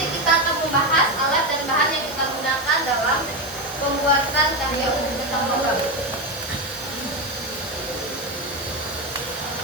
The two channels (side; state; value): right; noise; hiss, 17 dB below the sound